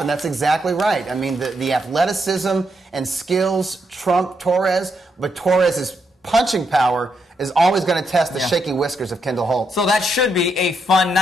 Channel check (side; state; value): both; normal; correlation 0.80